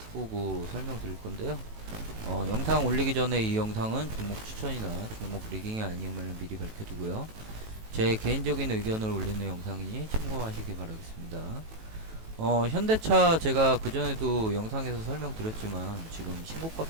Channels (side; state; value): left; late; 18 ms